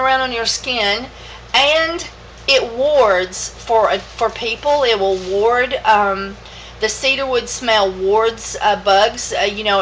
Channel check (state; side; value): identical; both; correlation 1.00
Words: on your skin. And it wards for people. It will ward, the cedarwood smell wards bugs.